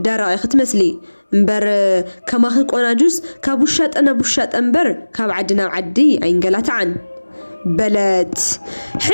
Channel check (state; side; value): inverted; both; correlation -1.00